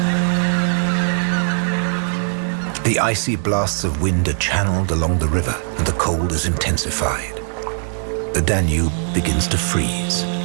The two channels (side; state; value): left; silent; 66 dB below the other